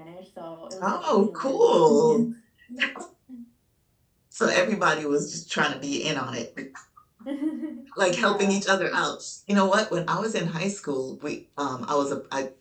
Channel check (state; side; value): identical; both; correlation 1.00